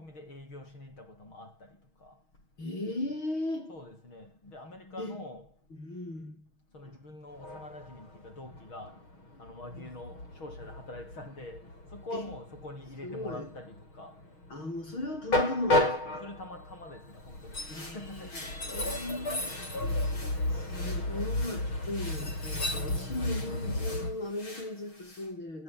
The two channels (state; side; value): late; right; 6.3 ms